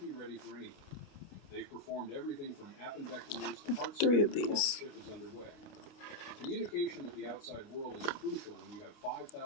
ready for anything. They've performed everything from appendectomies to heart surgery while the ship is underway. Communication with the outside world is crucial when you have 5,000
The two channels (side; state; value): right; late; 29 ms